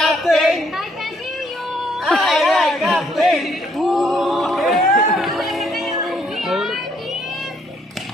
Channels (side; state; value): both; normal; correlation 0.69